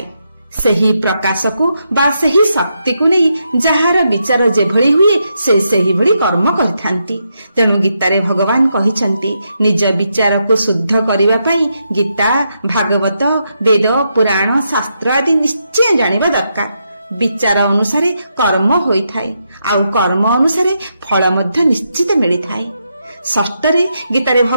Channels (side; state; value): both; inverted; correlation -0.82